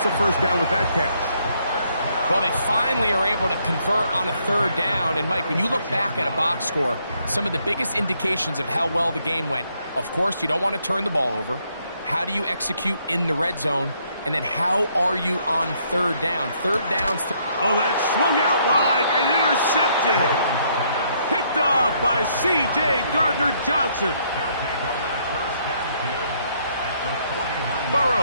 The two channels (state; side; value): inverted; both; correlation -0.70